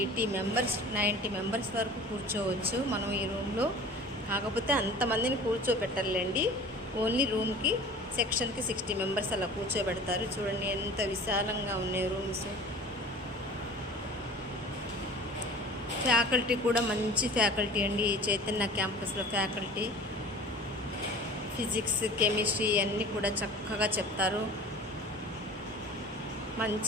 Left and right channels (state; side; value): normal; both; correlation 0.42